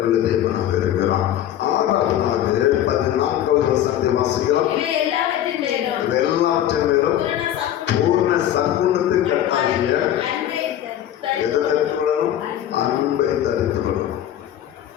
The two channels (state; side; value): quieter; right; 11.4 dB